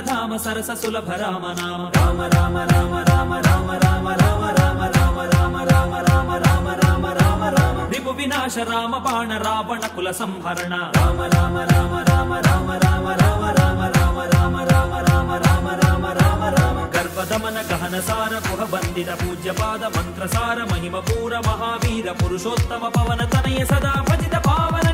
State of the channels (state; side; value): identical; both; correlation 1.00